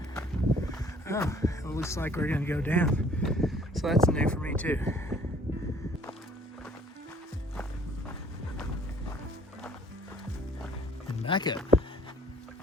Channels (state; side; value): normal; both; correlation 0.57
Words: Oh, it looks like we're gonna go down. So that's new for me too. And back up.